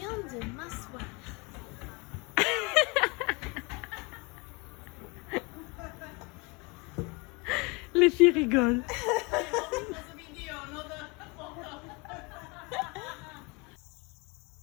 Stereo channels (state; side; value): quieter; right; 28.4 dB